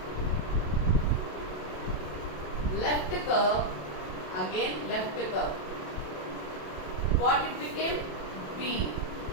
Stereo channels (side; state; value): right; late; 27 ms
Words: left curve, again left curve. What it became? B.